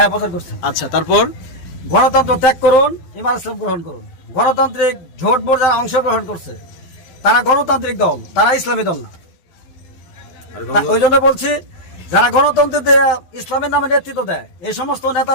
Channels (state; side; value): late; right; 12 ms